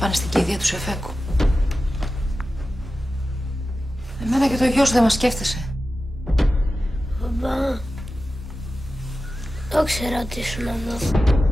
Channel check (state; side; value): normal; both; correlation 0.93